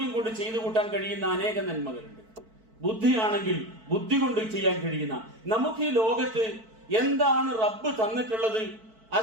കൊണ്ട് ചെയ്തു കൂട്ടാൻ കഴിയുന്ന അനേകം നന്മകളുണ്ട്. ബുദ്ധിയാണെങ്കിൽ ബുദ്ധി കൊണ്ട് ചെയ്യാൻ കഴിയുന്ന, നമുക്ക് ഈ ലോകത്ത് എന്താണ് റബ്ബ് തന്നിട്ടുള്ളത്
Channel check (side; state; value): left; late; 4.5 ms